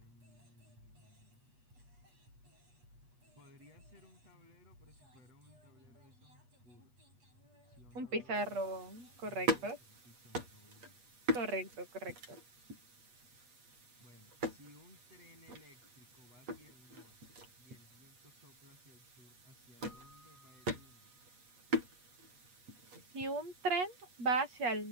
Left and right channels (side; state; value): left; late; 8.2 ms